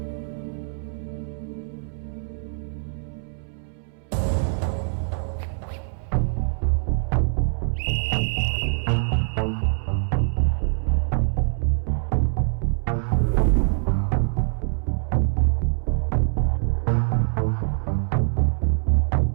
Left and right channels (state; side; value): silent; left; 63 dB below the other